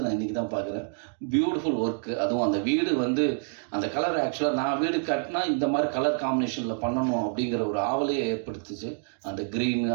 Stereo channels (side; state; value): left; silent; 58 dB below the other